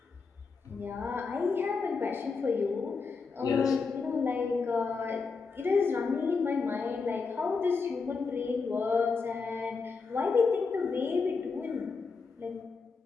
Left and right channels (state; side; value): quieter; right; 4.7 dB